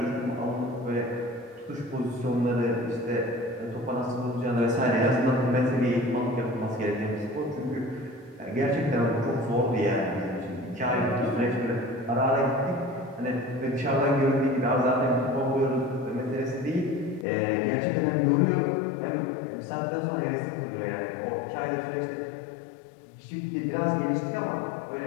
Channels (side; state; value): right; drops out; at 17.2 s